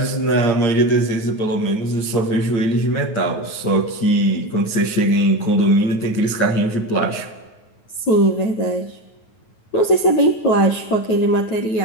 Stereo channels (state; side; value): late; right; 9.4 ms